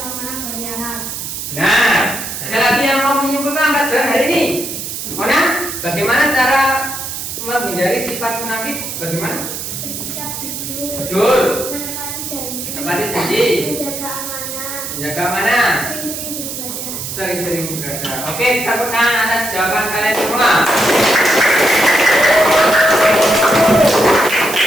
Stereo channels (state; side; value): noise; right; hiss, 6 dB below the sound